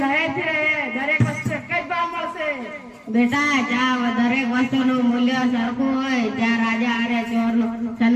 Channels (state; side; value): identical; both; correlation 1.00